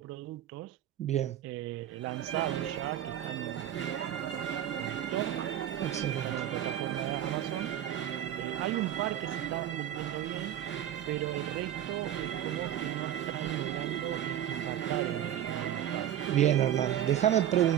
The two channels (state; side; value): quieter; left; 11.0 dB